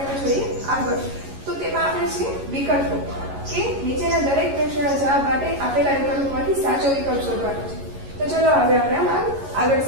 જોઈએ આગળ તો તેમાં આપણે છે વિકલ્પો કે નીચેના દરેક પ્રશ્નના જવાબ માટે આપેલા વિકલ્પોમાંથી સાચો વિકલ્પ શોધવાનો છે તો ચલો હવે આપણે આગળ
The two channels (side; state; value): left; late; 11 ms